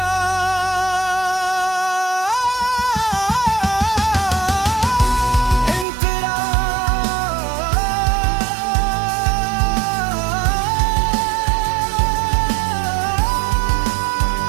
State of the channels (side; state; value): left; drops out; at 5.9 s